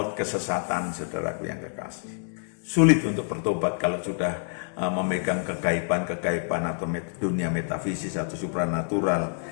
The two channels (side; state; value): right; silent; 60 dB below the other